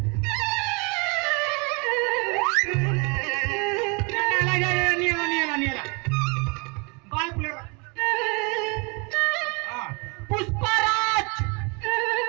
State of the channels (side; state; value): left; quieter; 31.7 dB